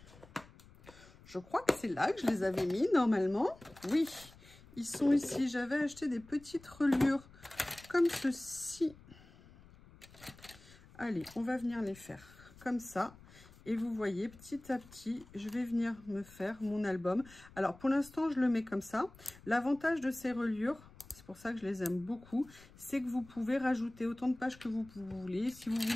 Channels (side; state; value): left; noise; rumble, 22 dB below the sound